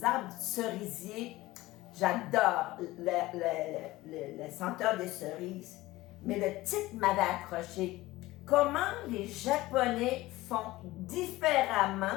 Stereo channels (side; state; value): right; quieter; 18.3 dB